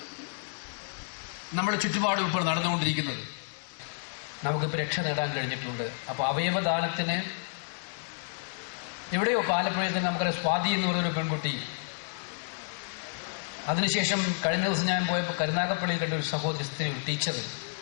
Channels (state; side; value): silent; right; digital silence